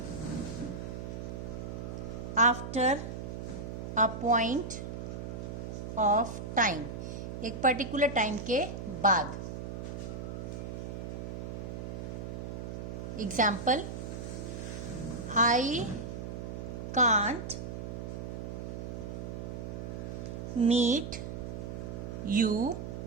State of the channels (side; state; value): right; noise; hum, 6 dB below the sound